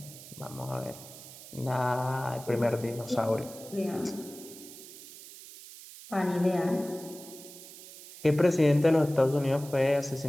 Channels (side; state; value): right; noise; hiss, 16 dB below the sound